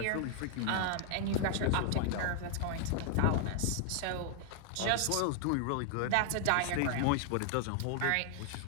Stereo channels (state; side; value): different; both; correlation 0.00